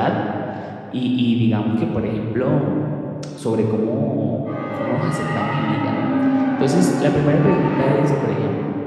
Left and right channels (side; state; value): both; identical; correlation 1.00